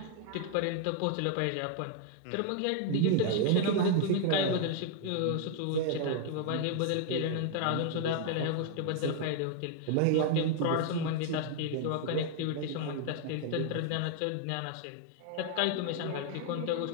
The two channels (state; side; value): different; both; correlation 0.00